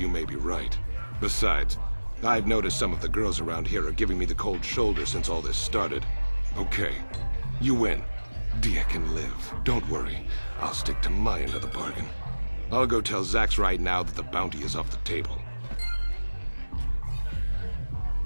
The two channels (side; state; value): both; inverted; correlation -1.00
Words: may be right. Besides, I've noticed some of the girls around here are giving me the cold shoulder since all this started. Okay, you win. Dia can live. Don't worry. I'll stick to my end of the bargain. I'll go tell Zax right now that the bounty is off the table.